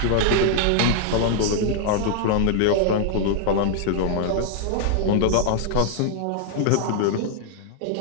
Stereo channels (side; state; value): both; different; correlation -0.01